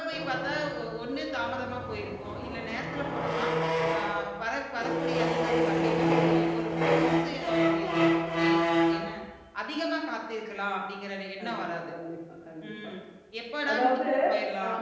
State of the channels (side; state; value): both; identical; correlation 1.00